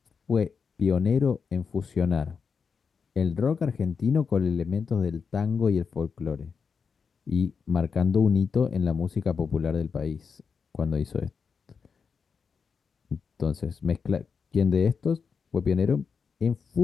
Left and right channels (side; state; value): right; quieter; 5.8 dB